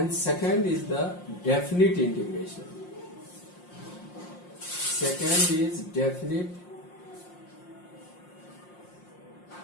second is the definite integration. Second is definite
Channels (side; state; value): right; late; 5.6 ms